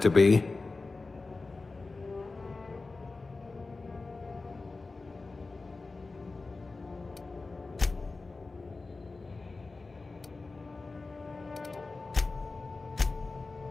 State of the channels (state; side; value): quieter; right; 3.7 dB